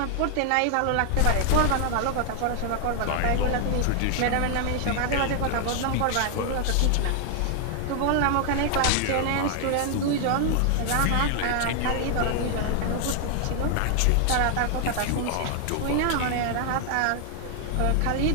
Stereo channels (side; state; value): both; different; correlation 0.00